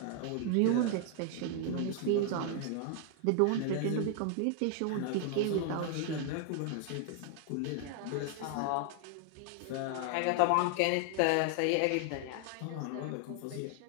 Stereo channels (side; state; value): both; different; correlation 0.00